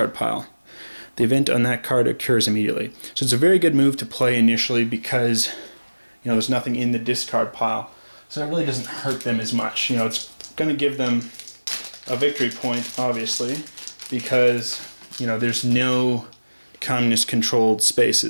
pile. The event on that card occurs immediately. So it's a very good move to play initially because there's nothing in the discard pile. So it really doesn't hurt them as much. It's going to give them a victory point, obviously, because there's no communist controlled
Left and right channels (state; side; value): inverted; both; correlation -1.00